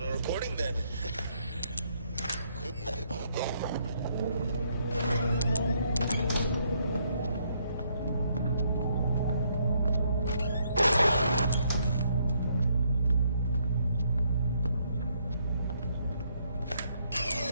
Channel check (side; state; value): both; inverted; correlation -0.72